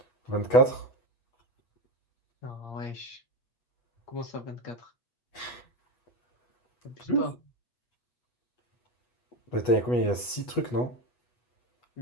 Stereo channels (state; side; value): late; right; 8.2 ms